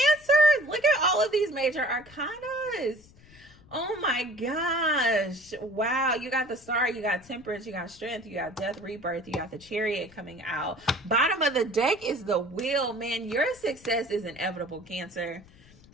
Look at all of these major arcanas. Oh my gosh. Wow. You got the Star, you got Temperance, you got Strength, you got Death, Rebirth, you got the Chariot coming out. Bottom of the deck is the Wheel. Man, your success is inevitable, Cancer.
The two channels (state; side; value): noise; left; rumble, 24 dB below the sound